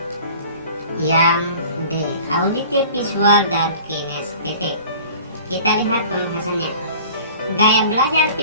yang D, auditif, visual, dan kinestetik. Kita lihat pembahasannya. Gaya belajar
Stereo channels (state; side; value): inverted; both; correlation -0.45